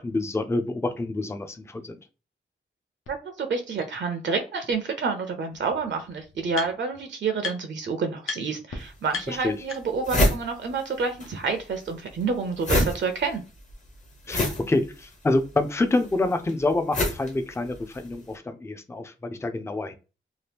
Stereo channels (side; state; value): both; normal; correlation 0.57